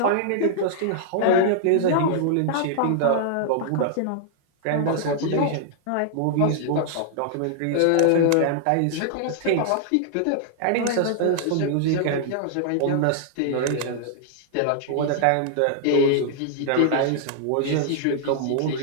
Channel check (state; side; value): different; both; correlation -0.01